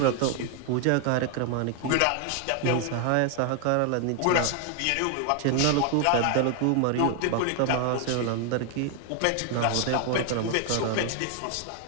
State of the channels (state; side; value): different; both; correlation 0.00